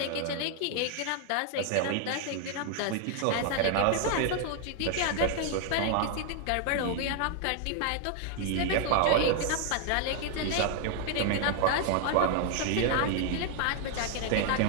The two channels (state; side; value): different; both; correlation 0.00